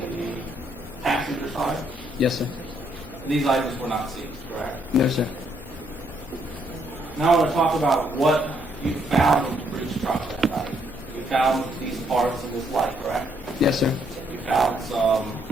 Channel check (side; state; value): both; normal; correlation 0.72